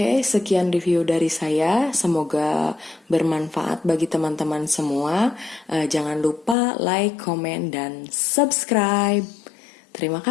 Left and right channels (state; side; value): drops out; right; at 6.6 s